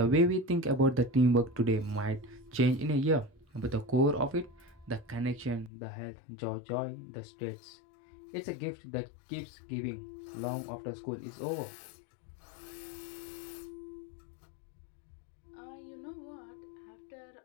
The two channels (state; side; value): drops out; right; at 5.7 s